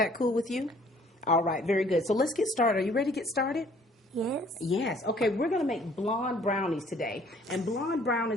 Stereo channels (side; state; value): both; normal; correlation 0.58